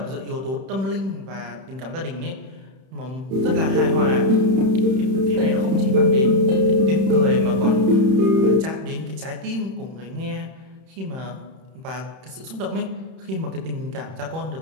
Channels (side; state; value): left; late; 31 ms